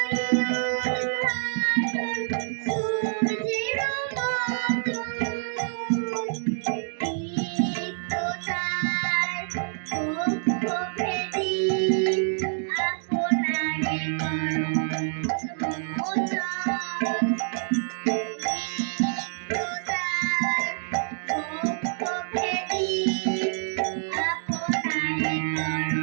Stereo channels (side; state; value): left; silent; digital silence